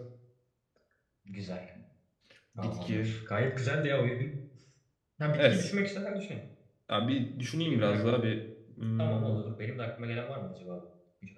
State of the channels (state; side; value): identical; both; correlation 1.00